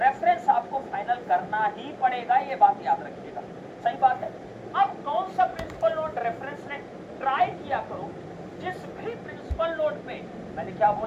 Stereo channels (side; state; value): both; identical; correlation 1.00